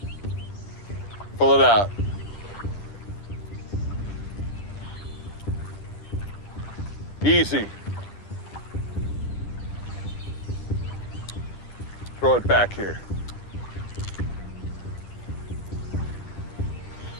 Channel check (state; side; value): late; right; 10 ms